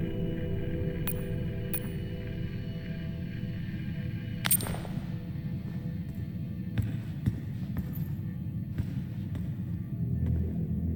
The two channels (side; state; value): both; identical; correlation 1.00